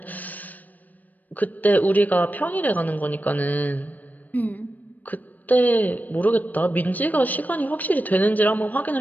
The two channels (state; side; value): late; right; 0.082 ms